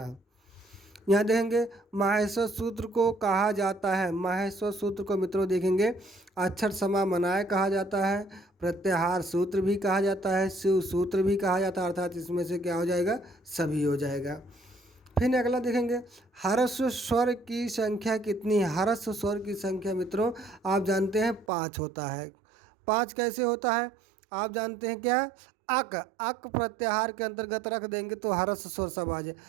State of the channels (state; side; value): drops out; left; at 21.5 s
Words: यहाँ देखेंगे माहेश्वर सूत्र को कहा जाता है, माहेश्वर सूत्र को मित्रों देखेंगे अक्षर समामनाय कहा जाता है, प्रत्याहार सूत्र भी कहा जाता है, शिव सूत्र भी कहा जाता है, अर्थात इसमें से क्या हो जाएगा, सभी हो जाएगा। फिर अगला देखेंगे ह्रस्व स्वर की संख्या कितनी है। ह्रस्व स्वर की संख्या मित्रों आप जानते हैं 5 होता है। 5 कैसे होता है आप जानते हैं क्या, अक, अक प्रत्याहार के अंतर्गत रख देंगे तो ह्रस्व स्वर सब आ जाए,